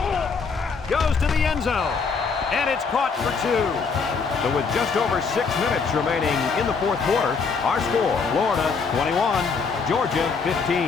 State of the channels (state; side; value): quieter; right; 5.1 dB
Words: Goes to the end zone. And it's caught for 2. So with just over 6 minutes remaining in the 4th quarter, our score, Florida 21, Georgia